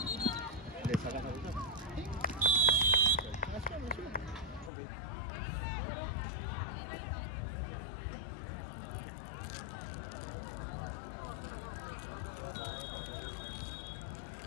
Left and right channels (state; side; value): drops out; right; at 4.7 s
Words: ¿Le sacas la ruta? Ok.